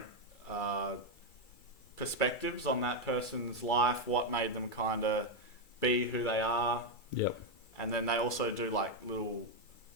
perspectives on that person's life, what made them kind of be who they are. Yep. And then they also do like little...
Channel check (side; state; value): right; late; 2.3 ms